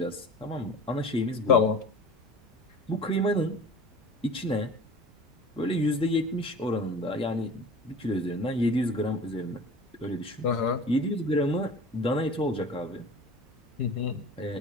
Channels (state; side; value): normal; both; correlation 0.40